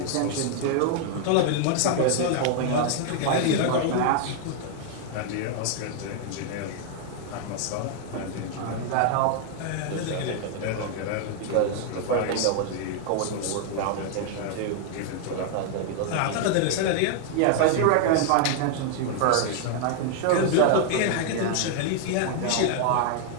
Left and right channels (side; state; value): both; different; correlation 0.00